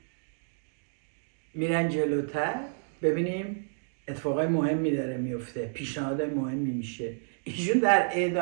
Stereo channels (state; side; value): silent; left; digital silence